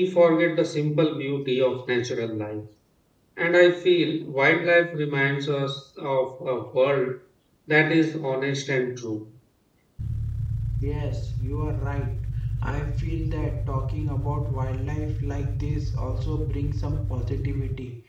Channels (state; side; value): identical; both; correlation 1.00